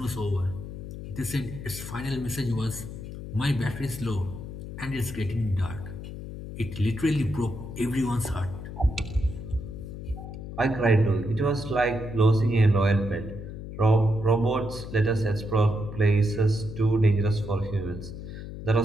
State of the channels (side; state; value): left; noise; hum, 10 dB below the sound